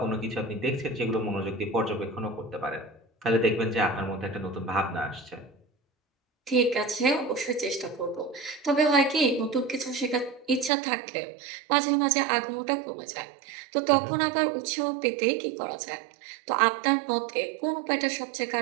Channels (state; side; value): drops out; left; at 10.7 s